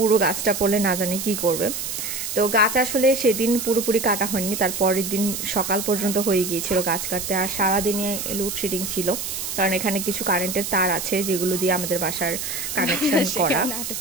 গাছটা পড়লে না জানি কি করবে। তো গাছ আসলে সেদিন পুরোপুরি কাটা হয়নি, তার পরের দিন সকাল পর্যন্ত হয়ে গিয়েছিল গাছ কাটতে। আর সারাদিনে লোডশেডিং ছিল, কারণ এখানে কিছু কারেন্টের তার আছে যেগুলো দিয়ে আমাদের বাসার কানেকশন করা।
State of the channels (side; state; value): right; noise; hiss, 5 dB below the sound